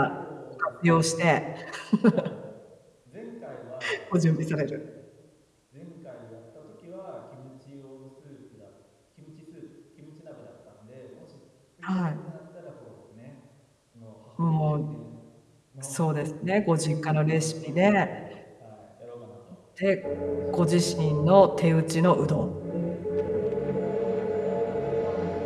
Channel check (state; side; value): identical; both; correlation 1.00